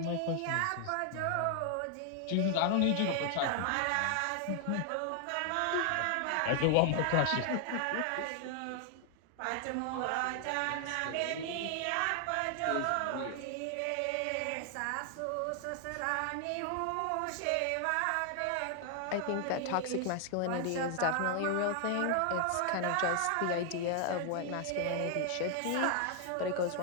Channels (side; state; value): both; different; correlation 0.00